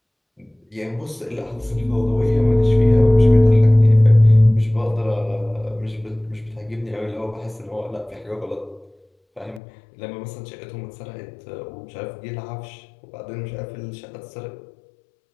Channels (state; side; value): drops out; right; at 9.6 s